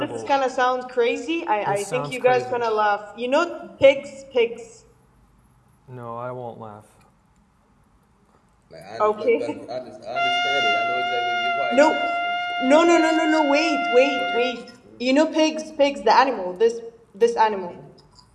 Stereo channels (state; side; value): identical; both; correlation 1.00